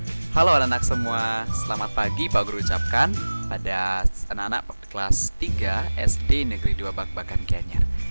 Halo anak-anak semua, selamat pagi Pak Guru ucapkan pada anak-anak kelas 3 SD Negeri 2 Bak-Bakan Gianyar.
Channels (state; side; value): inverted; both; correlation -1.00